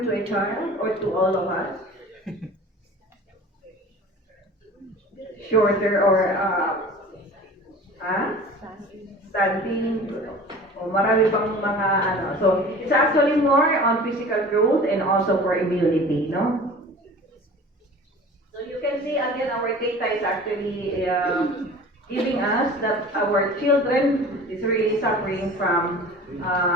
to a child or to all of us? Shorter or standing o marami pang mga ano. So it's actually more on physical growth and also for immunity, no? So you can see again our data is actually giving us that our children is really suffering from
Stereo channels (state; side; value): normal; both; correlation 0.41